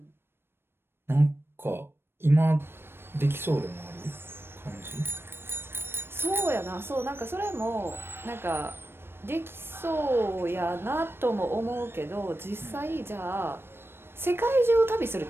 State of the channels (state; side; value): late; left; 0.11 ms